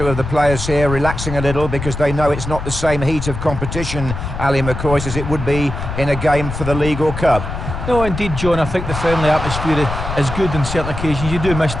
of the players here relaxing a little because they know it's not the same heat of competition, Ali McCoy, as it would be in a game for the League or Cup. No, indeed, John, I think the friendly atmosphere is good on certain occasions. You do miss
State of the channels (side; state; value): left; noise; rumble, 6 dB below the sound